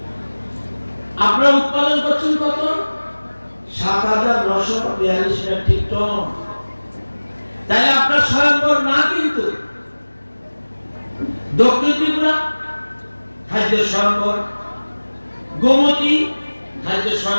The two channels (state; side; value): inverted; both; correlation -1.00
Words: আপনারা উৎপাদন করছেন কত ৭,৯৪২ মেট্রিক টন। তাহলে আপনার স্বয়ংবর না কিন্তু দক্ষিণ ত্রিপুরা খাদ্য স্বয়ংবর, গোমতী খাদ্য